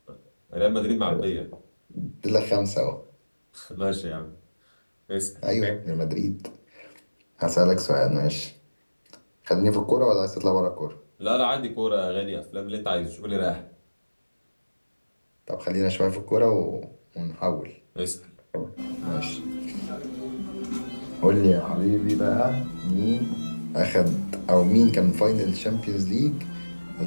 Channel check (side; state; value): both; inverted; correlation -1.00